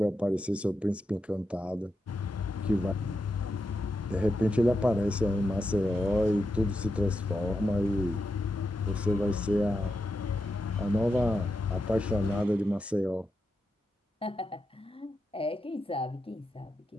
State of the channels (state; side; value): normal; both; correlation 0.86